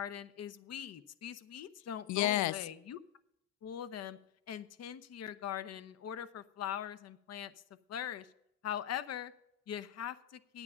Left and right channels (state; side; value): quieter; right; 11.4 dB